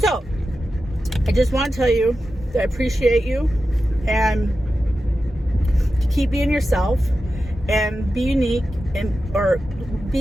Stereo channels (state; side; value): normal; both; correlation 0.92